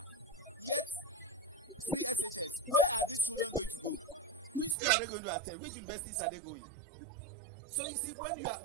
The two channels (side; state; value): left; drops out; at 4.8 s